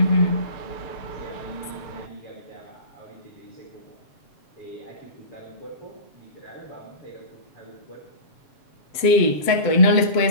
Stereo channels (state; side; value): late; right; 7.7 ms